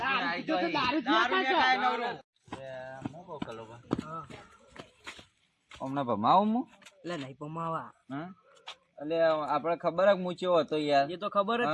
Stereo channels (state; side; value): identical; both; correlation 1.00